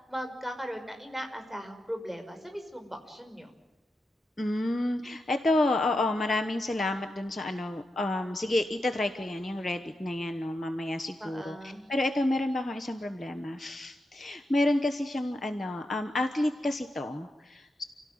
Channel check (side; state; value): both; normal; correlation 0.87